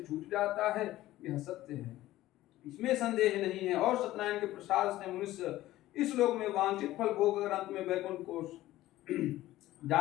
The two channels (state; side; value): quieter; right; 15.5 dB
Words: जाता है। यह सत्य है, इसमें संदेह नहीं है। और सत्यनारायण के प्रसाद से मनुष्य इस लोक में वांछित फल भोग कर अंत में वैकुंठ को